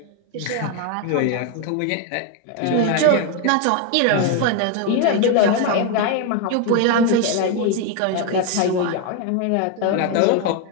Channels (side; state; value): both; different; correlation 0.01